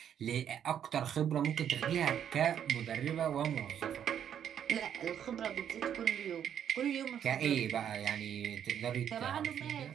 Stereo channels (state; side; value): quieter; left; 9.2 dB